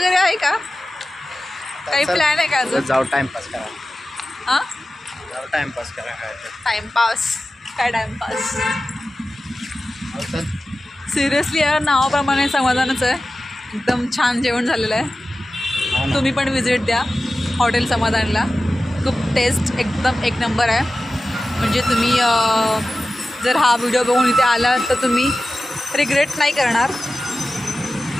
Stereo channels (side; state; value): both; normal; correlation 0.94